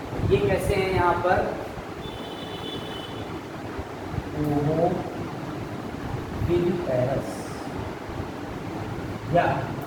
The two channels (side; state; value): both; identical; correlation 1.00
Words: ये कैसे हैं यहाँ पर? ओविपेरस या